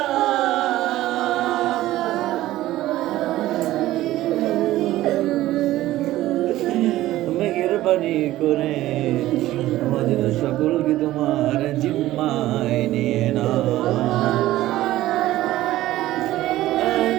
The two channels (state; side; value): quieter; left; 15.5 dB